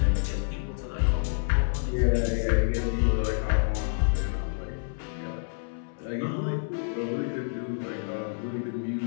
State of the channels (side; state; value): right; silent; 59 dB below the other